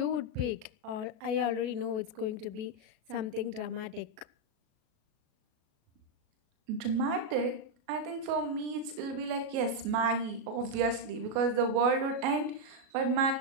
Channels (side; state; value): left; late; 37 ms